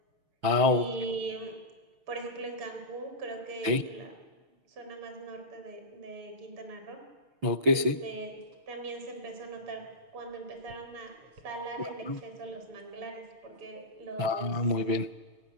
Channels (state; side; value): late; left; 6.5 ms